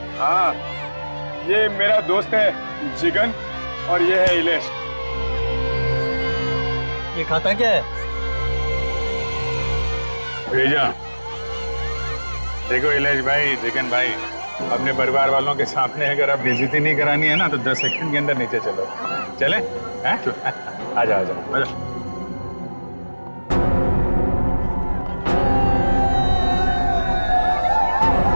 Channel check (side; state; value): both; inverted; correlation -1.00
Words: हाँ, ये मेरा दोस्त है जिगन और ये है इलेश। ये खाता क्या है? भेजा। देखो इलेश भाई, चिकन भाई, अपने परिवार वालों के सामने अगर आप बेइज्जती नहीं करानी है ना तो 10 सेकंड के अंदर नीचे चलो। चले? आ जाओ आ जाओ।